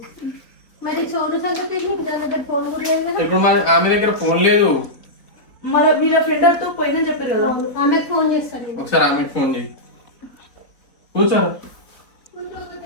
మరి సోను సంగతి నీకు దాని దగ్గర ఫోన్ కూడా లేదు కదా? ఇప్పుడు ఆమె దగ్గర ఫోన్ లేదు. మరి వీళ్ళ ఫ్రెండ్ తో పోయిందని చెప్పారు కదా. అవును. ఆమెకు ఫోన్ చేస్తాను నేను. ఒకసారి ఆమెకు ఫోన్ చేయి. కూర్చో.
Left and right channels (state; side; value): late; right; 3.7 ms